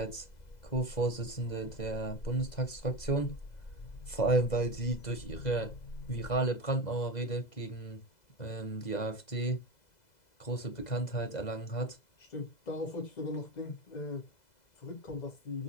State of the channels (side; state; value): right; late; 2.0 ms